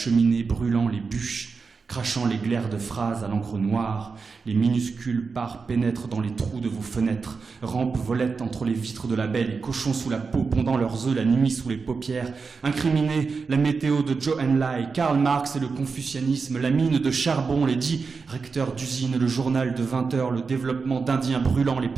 brûlant les bûches, crachant les glaires de phrases à l'encre noire, les minuscules parts pénètrent dans les trous de vos fenêtres, rampent volettent entre les vitres de la baie, les cochons sous la peau, pondant leurs œufs la nuit sous les paupières, incriminez la météo de Zhou Enlai, Karl Marx et le confucianisme, la mine de charbon, les 10 recteurs d'usine, le journal de 20 heures, le développement d'indiens brûlants, les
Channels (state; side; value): quieter; left; 4.8 dB